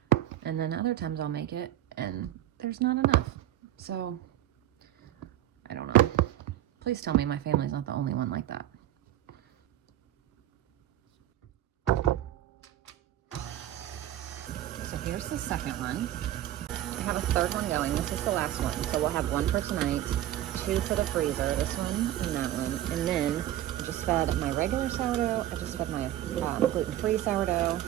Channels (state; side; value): quieter; left; 12.9 dB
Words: And then other times I'll make it and there's not enough. So I don't know. Please tell me my family's not the only one like that. So here's the second one. I have a third one going. This is the last one. So we'll have 1 for tonight, 2 for the freezer, this one and that one. And then I just fed my regular sourdough. I just fed my gluten-free sourdough.